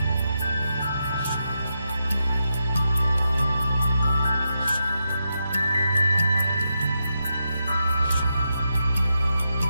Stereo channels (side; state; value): both; inverted; correlation -0.85